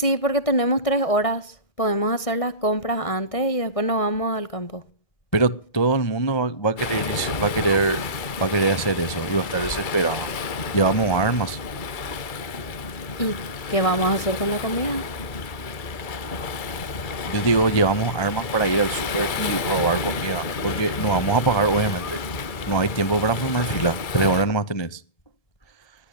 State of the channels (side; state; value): right; late; 1.7 ms